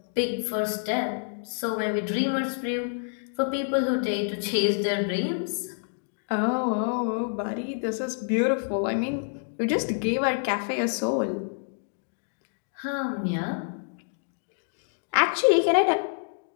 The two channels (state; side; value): silent; right; digital silence